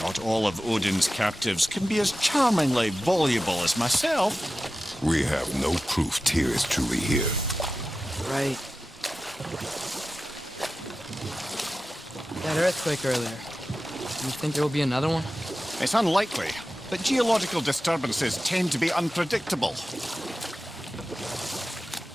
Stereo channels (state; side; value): normal; both; correlation 0.94